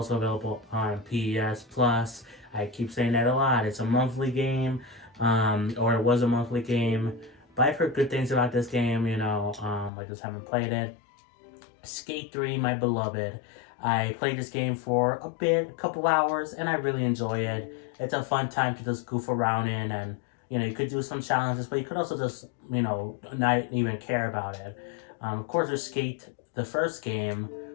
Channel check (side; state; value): right; drops out; at 9.9 s